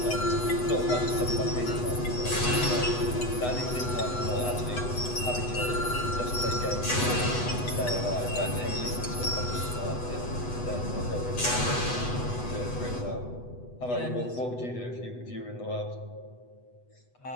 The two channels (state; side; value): late; right; 8.1 ms